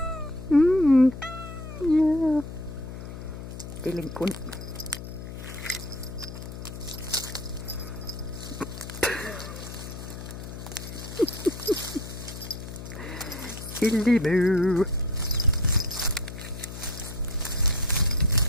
Yeah. Delinquent. Silly moo.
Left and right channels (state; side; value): noise; left; hum, 10 dB below the sound